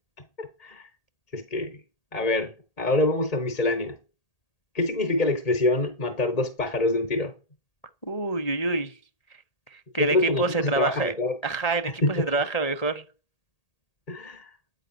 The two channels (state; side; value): late; right; 1.8 ms